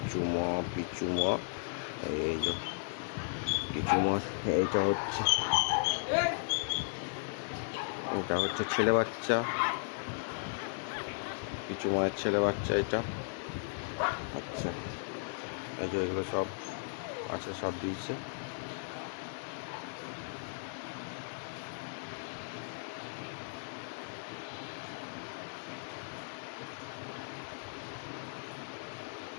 ম পিচ্চু ম। এই যে পিচ্চু ম। এটা হচ্ছে ছেলে বাচ্চা, পিচ্চু মায়ের ছেলে বাচ্চা এটা। আচ্ছা, এই যে এগুলো সব আছে, সব দিয়েছে।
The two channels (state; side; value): silent; right; digital silence